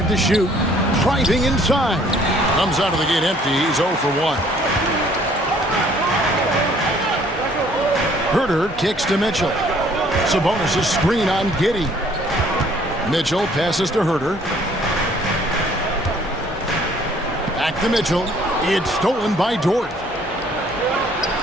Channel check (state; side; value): normal; both; correlation 0.59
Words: to shoot. Driving inside. Comes out of the gate empty. He's 0 for 1. Herter kicks to Mitchell. Sabonis' screen on Giddey. Mitchell passes to Herter. Back to Mitchell. It's stolen by Dort.